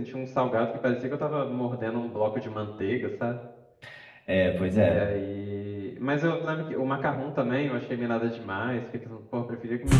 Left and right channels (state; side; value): identical; both; correlation 1.00